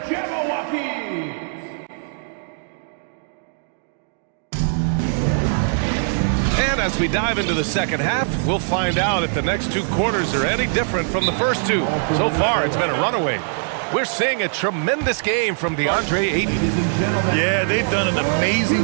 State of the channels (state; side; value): silent; left; digital silence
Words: And as we dive into the second half, we'll find out if the next 2 quarters are any different from the first 2. So far, it's been a runaway. We're seeing a tremendous game from DeAndre Ayton. Yeah, they've done an amazing